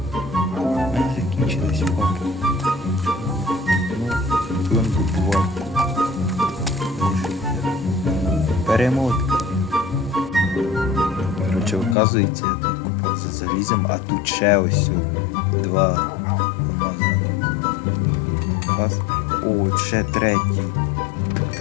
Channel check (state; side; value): drops out; right; at 12.0 s